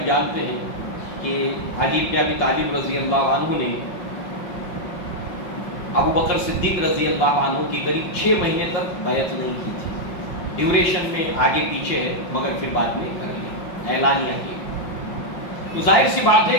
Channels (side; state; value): right; late; 5.6 ms